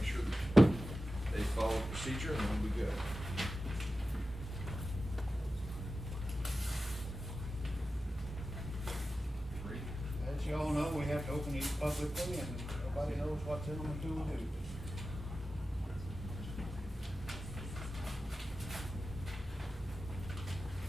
sure that they follow the procedure, and then we'll be good. Three. That As you all know, we have to open these publicly, and nobody knows what's in them until we do.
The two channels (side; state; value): both; normal; correlation 0.93